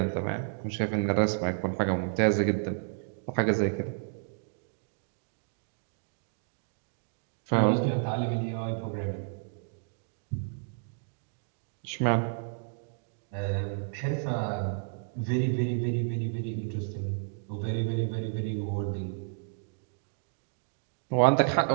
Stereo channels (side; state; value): left; silent; digital silence